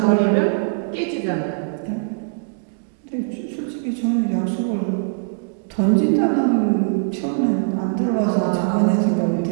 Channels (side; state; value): left; silent; digital silence